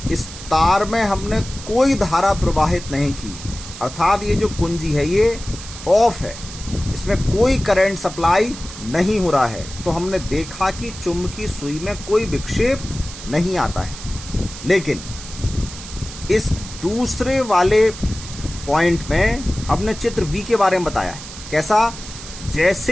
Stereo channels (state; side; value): noise; right; hiss, 13 dB below the sound